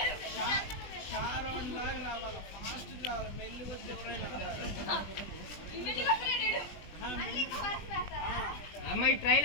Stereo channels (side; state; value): right; late; 20 ms